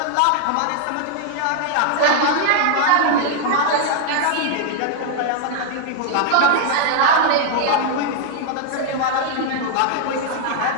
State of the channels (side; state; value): both; different; correlation 0.00